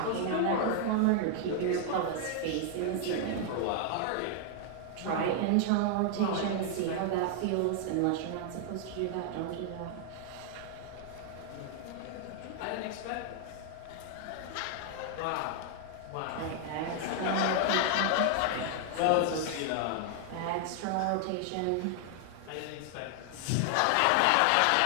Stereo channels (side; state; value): both; different; correlation 0.00